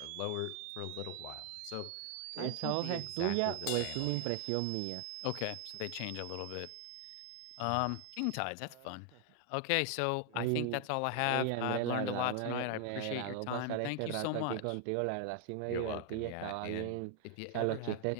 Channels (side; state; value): both; different; correlation 0.00